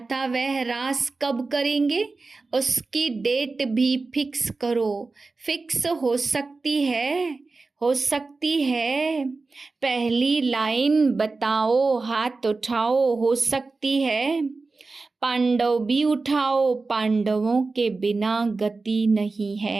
था वह रास कब करेंगे, उसकी डेट भी फिक्स करो। फिक्स हो सकती है। पहली लाइन बताओ, हाथ उठाओ, हो सकती है। पांडव भी उठाओ, पांडवों के बिना गति नहीं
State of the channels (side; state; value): left; quieter; 3.8 dB